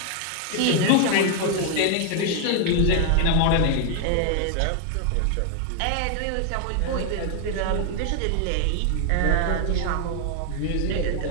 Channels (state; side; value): different; both; correlation 0.00